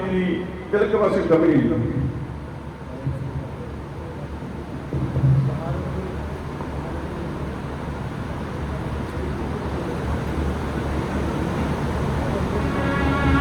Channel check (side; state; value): both; identical; correlation 1.00